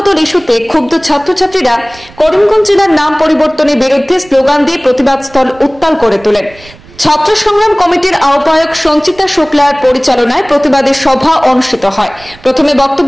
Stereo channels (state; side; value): noise; right; rumble, 24 dB below the sound